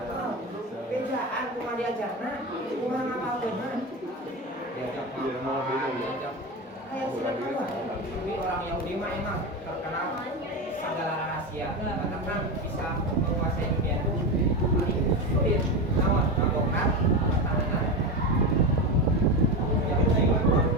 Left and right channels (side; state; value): both; normal; correlation 0.18